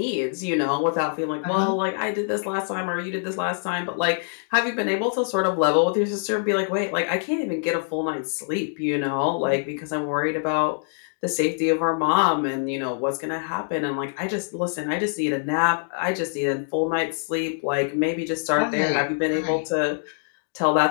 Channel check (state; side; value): silent; right; digital silence